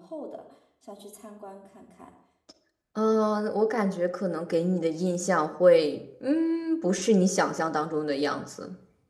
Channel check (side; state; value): both; identical; correlation 1.00